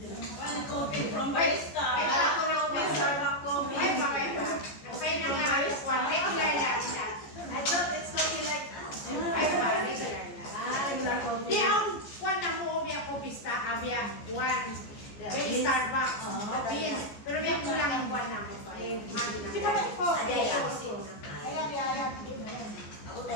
Coffee from Barista. Ay, Kala ko lang may Starbucks coffee. Ay, bakit ba? Napay na nga alas 1. Regular lang siya. I thought it's coffee like Ay, ba? Regular lang. regular coffee. Di ang kwan na mo biya ko pista abya one very Starbucks beans pero biya kulang ang kwan na mo pa si ba ko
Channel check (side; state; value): right; late; 14 ms